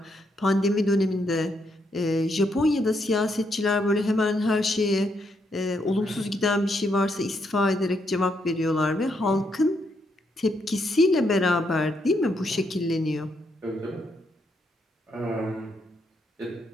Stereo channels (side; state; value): both; normal; correlation 0.77